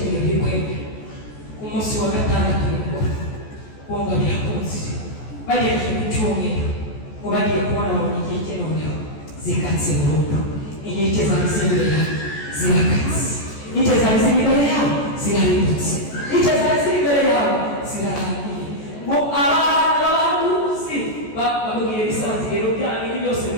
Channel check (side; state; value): right; late; 14 ms